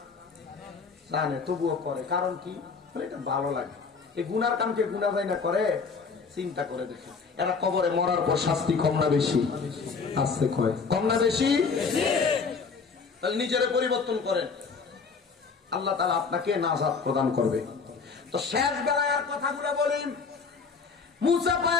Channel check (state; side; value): quieter; right; 5.1 dB